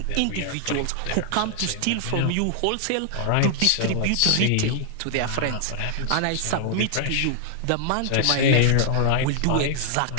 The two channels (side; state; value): both; different; correlation 0.00